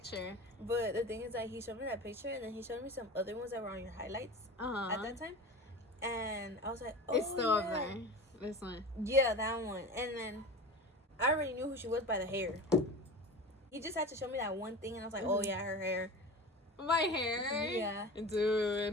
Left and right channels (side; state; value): both; normal; correlation 0.32